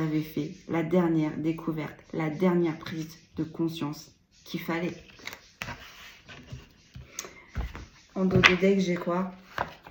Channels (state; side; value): identical; both; correlation 1.00